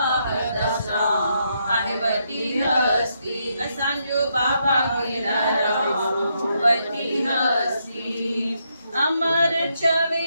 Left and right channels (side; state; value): both; inverted; correlation -0.78